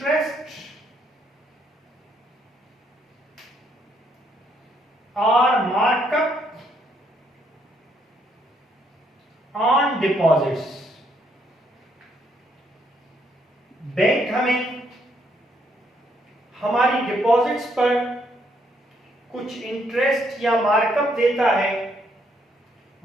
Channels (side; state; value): both; normal; correlation 0.72